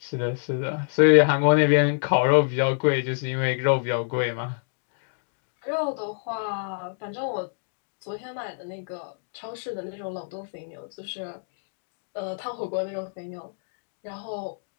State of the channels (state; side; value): silent; right; digital silence